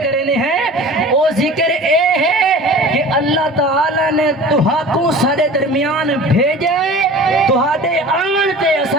ہیں وہ ذکر اے ہے کہ اللہ تعالیٰ نے تہاکوں سارے درمیان بھیجے تہاڈے آن تے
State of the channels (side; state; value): both; normal; correlation 0.40